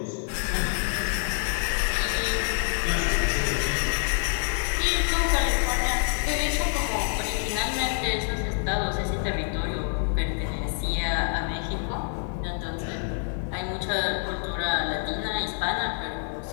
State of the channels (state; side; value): silent; right; digital silence